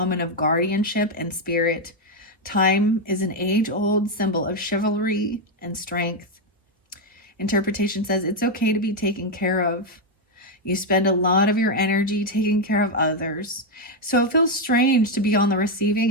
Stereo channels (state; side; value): normal; both; correlation 0.03